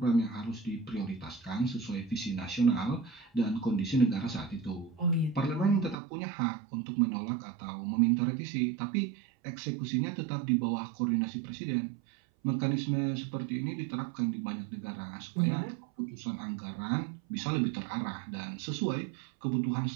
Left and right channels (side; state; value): left; drops out; at 6.0 s